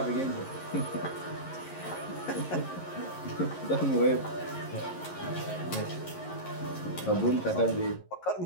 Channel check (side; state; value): right; late; 11 ms